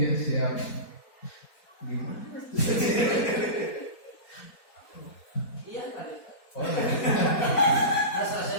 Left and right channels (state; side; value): late; right; 4.3 ms